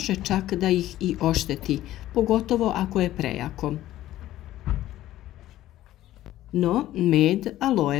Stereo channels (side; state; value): right; quieter; 14.2 dB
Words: čak da ih i ošteti, pogotovo ako je prejako. No, med,